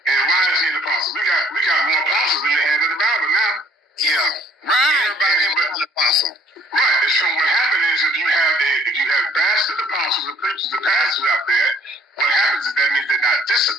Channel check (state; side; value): normal; both; correlation 0.59